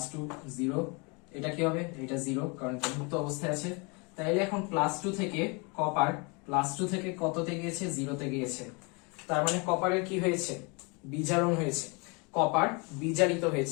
0, এটা কি হবে, এটা 0 কারণ এটা মুক্ত অবস্থায় আছে। তাইলে এখন +2 থেকে কপার +2 থেকে কততে গিয়েছে, 0 তে গিয়েছে। তার মানে কপারের কি হয়েছে, বিজারণ হয়েছে, কপার বিজারিত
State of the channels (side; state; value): right; quieter; 30.7 dB